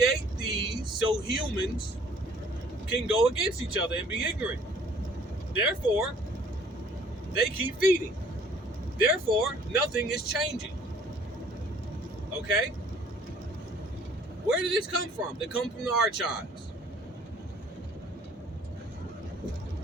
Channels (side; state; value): both; normal; correlation 0.56